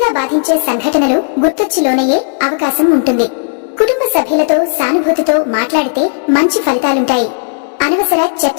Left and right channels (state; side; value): silent; right; digital silence